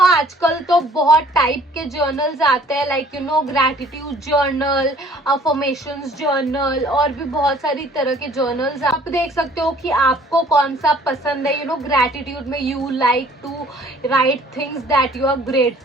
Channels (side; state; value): both; normal; correlation 0.55